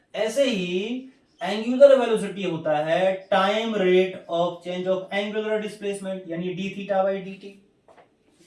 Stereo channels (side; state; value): both; identical; correlation 1.00